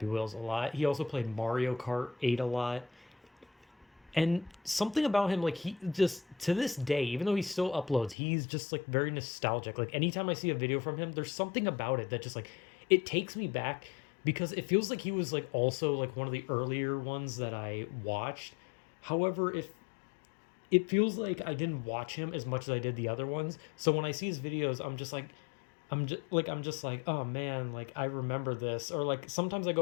Wheels a lot. He also played Mario Kart 8 a lot. And something about him, like he just to this day, even though he still uploads, he's just like very nostalgic. Like anytime I see a video from him, there's something about it that just like it takes me back because it feels like he was like also like one of the earlier ones that I watched. However, if it feels like I didn't watch him as much as I did the other ones, so when I see his videos, I'm just like, oh man, like I remember this. Or like sometimes I go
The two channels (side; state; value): right; drops out; at 8.2 s